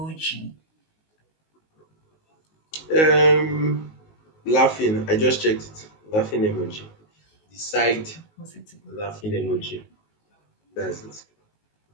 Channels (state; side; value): late; right; 19 ms